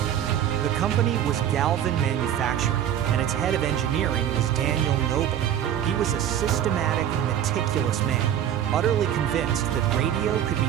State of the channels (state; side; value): quieter; left; 10.3 dB